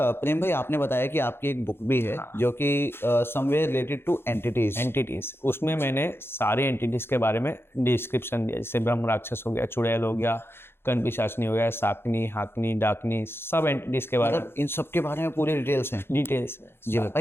प्रेम भाई, आपने बताया कि आपकी एक बुक भी है जो कि somewhere related two entities. Entities, उसमें मैंने सारे एंटिटीज के बारे में डिस्क्रिप्शन दिया, जैसे ब्रह्म राक्षस हो गया, चुड़ैल हो गया, कण पिशाचनी हो गया, साकनी, हाकनी, डाकनी, सब एंटिटीज के बारे में मतलब इन सब के बारे में पूरी डिटेल्स हैं। डिटेल्स में। जी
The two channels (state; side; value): late; right; 0.11 ms